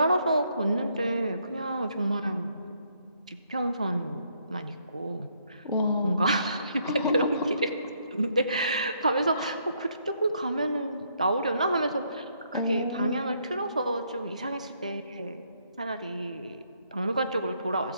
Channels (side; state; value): both; inverted; correlation -0.71